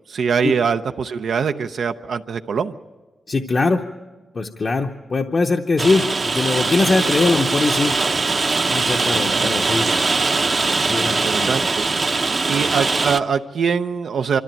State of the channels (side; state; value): both; normal; correlation 0.88